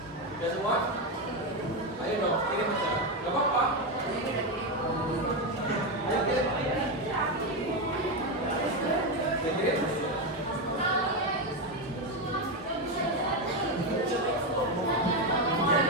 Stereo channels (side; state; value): both; normal; correlation 0.10